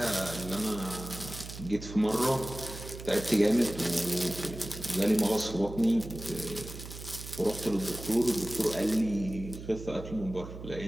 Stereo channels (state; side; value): noise; right; hum, 11 dB below the sound